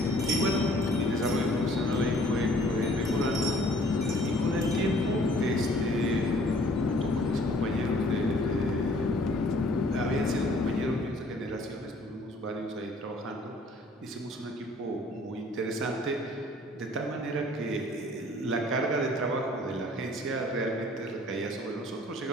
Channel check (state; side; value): normal; both; correlation 0.56